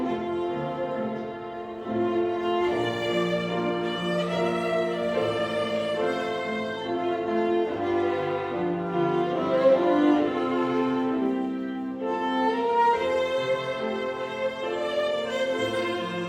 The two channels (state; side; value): identical; both; correlation 1.00